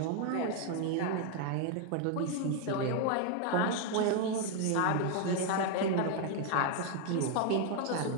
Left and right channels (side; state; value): both; different; correlation 0.01